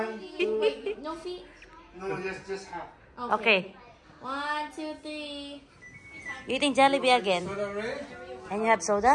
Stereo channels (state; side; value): identical; both; correlation 1.00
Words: 2. No feet. No, just half. Okay. 1, 2, 3. Eating Jollibee again. And you have